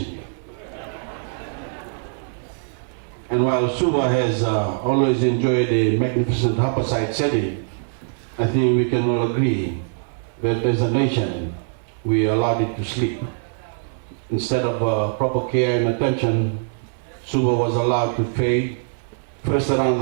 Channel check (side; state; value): left; silent; 64 dB below the other